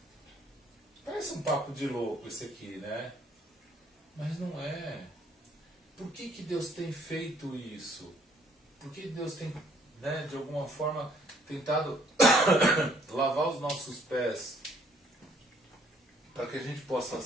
Parece um papo de louco esse aqui, né? Mas não é. Por que Deus tem feito isso? Por que Deus tem, né, de alguma forma, tentado lavar os nossos pés? Para que a gente possa,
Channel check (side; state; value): both; normal; correlation 0.63